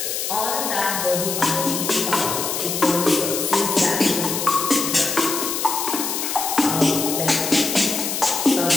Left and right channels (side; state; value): left; noise; hiss, 2 dB below the sound